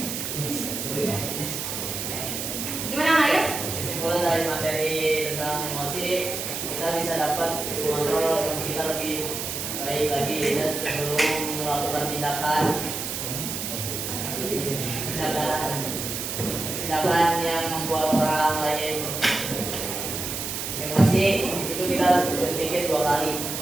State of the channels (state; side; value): noise; right; hiss, 4 dB below the sound